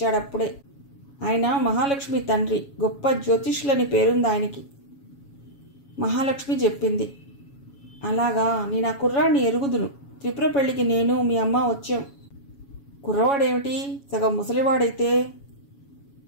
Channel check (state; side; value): late; right; 7.2 ms